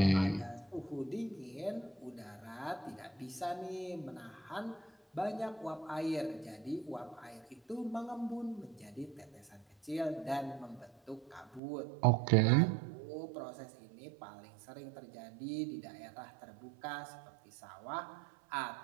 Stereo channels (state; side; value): drops out; left; at 11.6 s